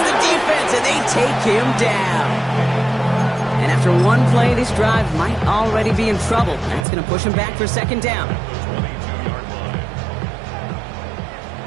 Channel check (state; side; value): drops out; left; at 6.9 s